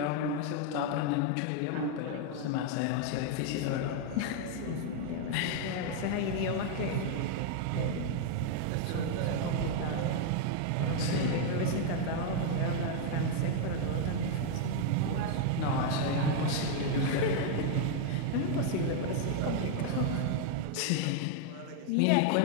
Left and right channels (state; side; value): different; both; correlation 0.00